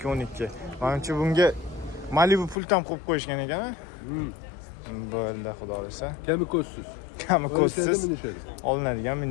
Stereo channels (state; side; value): drops out; right; at 2.6 s